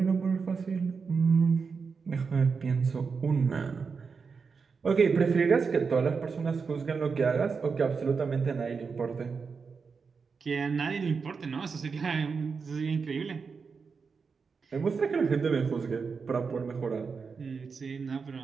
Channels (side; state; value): left; quieter; 5.3 dB